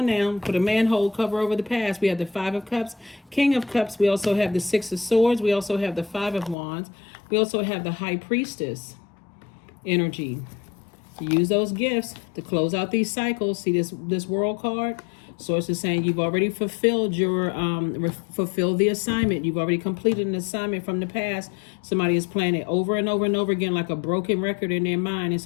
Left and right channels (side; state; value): right; drops out; at 6.6 s